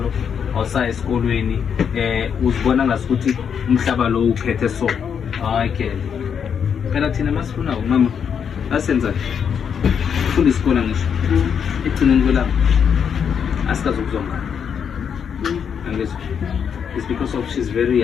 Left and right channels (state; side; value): quieter; right; 7.4 dB